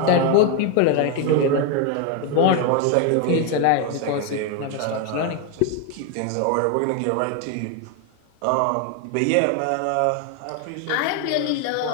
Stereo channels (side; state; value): both; different; correlation 0.01